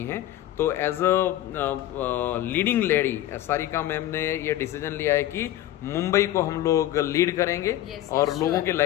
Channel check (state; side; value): quieter; right; 13.6 dB